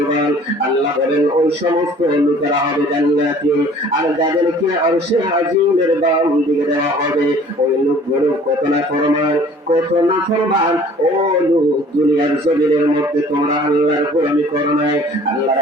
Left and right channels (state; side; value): normal; both; correlation 0.51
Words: আল্লাহ বলেন ওই সমস্ত লোকেরা হবে জান্নাতি, আর যাদেরকে আরশে আজিমের বাম দিকে দেওয়া হবে ওই লোকগুলো কত না ফরমান, কত না ফরমান। ও লোক, দুনিয়ার জমিনের মধ্যে তোমরা আল্লাহর গোলামি করো নাই, আল্লাহর